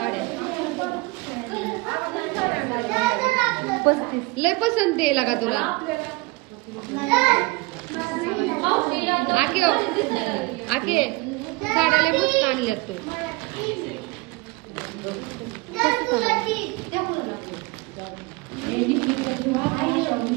लय पसंत आहे का तुला? आके आके साड्या लय मस्त आणल्यात तू.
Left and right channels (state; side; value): quieter; left; 23.1 dB